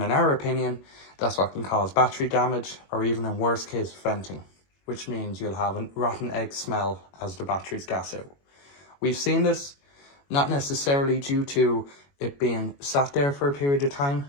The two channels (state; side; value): late; right; 21 ms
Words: in our opinion, that's what can cause battery damage, or even in worst case, venting, which means you'll have a rotten egg smell as the batteries gas out. We've seen this not necessarily due to it being sat there for a period of time,